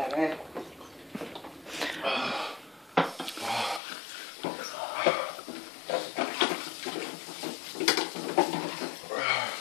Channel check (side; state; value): right; drops out; at 3.8 s